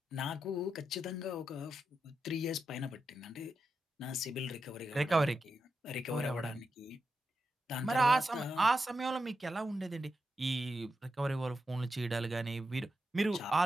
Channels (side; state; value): both; normal; correlation 0.87